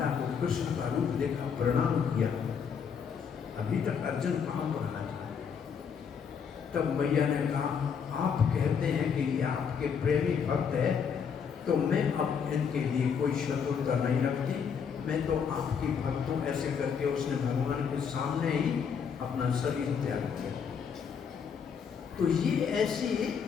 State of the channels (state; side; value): quieter; right; 6.8 dB